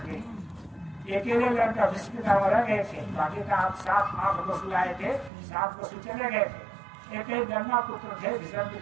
अकेले लड़का विषम पितामह रह गए थे, बाकी का आप 7-8 पशु आए थे, 7 पशु चले गए थे। एक गंगा पुत्र थे विषम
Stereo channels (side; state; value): left; drops out; at 5.3 s